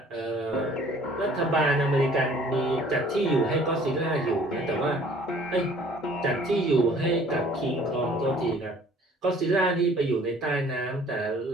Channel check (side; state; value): both; normal; correlation 0.54